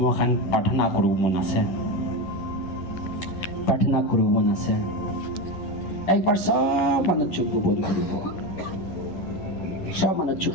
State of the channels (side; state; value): right; late; 10 ms